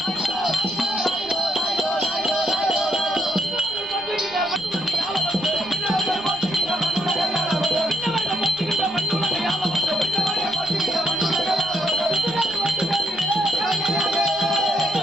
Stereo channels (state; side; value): noise; right; rumble, 24 dB below the sound